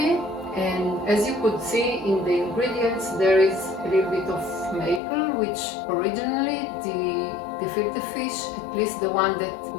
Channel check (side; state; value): right; drops out; at 5.0 s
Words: And as you could see in the ingredients, there is a little bit of maple, which originally the gefilte fish, at least the one that